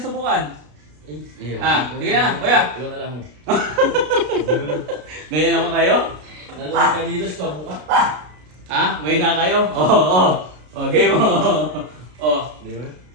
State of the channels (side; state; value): left; late; 33 ms